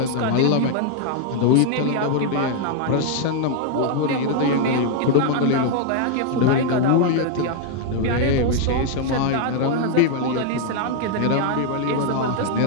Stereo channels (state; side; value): different; both; correlation 0.00